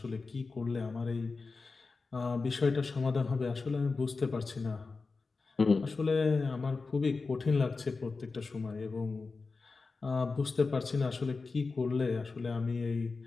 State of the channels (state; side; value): quieter; right; 4.2 dB